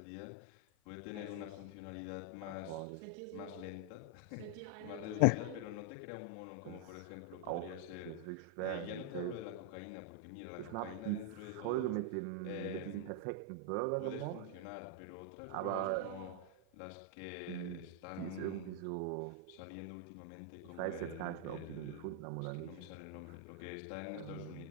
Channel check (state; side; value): different; both; correlation 0.00